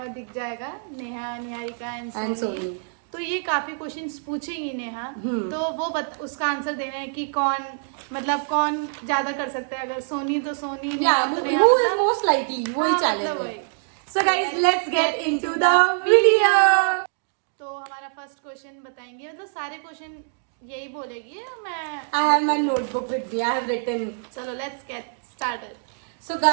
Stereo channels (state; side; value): silent; left; digital silence